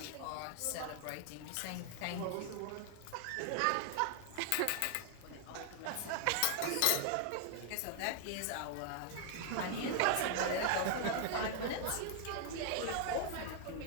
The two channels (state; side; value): different; both; correlation 0.00